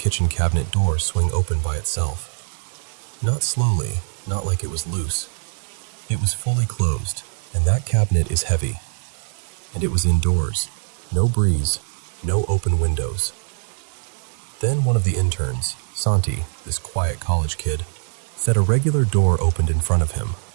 cabinet door swing open by itself. Not slowly, not like it was loose. It was fully closed, and that cabinet is heavy. And it was indoors, no breeze, no open windows. Then one of the interns, Santi, this quiet college kid, said a regular door opened in front of him.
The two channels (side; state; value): left; silent; 64 dB below the other